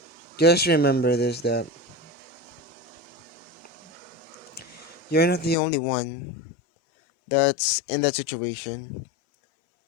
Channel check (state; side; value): drops out; right; at 5.6 s